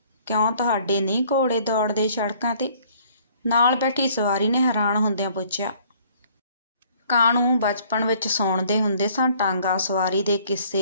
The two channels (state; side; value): inverted; both; correlation -0.59